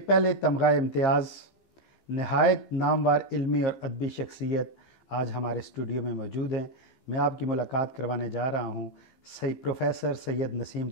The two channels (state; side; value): late; right; 15 ms